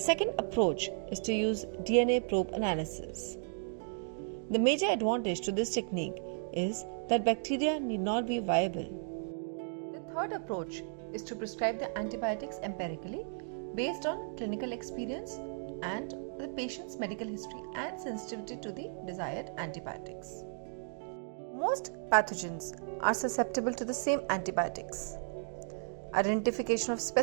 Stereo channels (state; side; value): silent; left; digital silence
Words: approach is to use DNA probe analysis. The major advantage to this technique is that bacteria need not be viable. The third approach is to prescribe the antibiotics empirically based on clinical experience and the patient's medical history and sensitivity to the desired antibiotics. Most pathogens are susceptible to the same antibiotics. Identification of